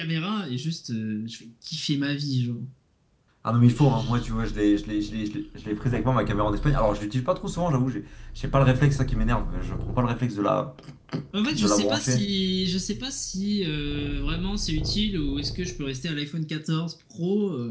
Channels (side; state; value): both; identical; correlation 1.00